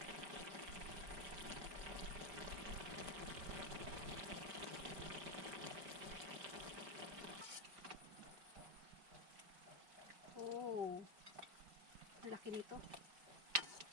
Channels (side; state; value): left; late; 4.9 ms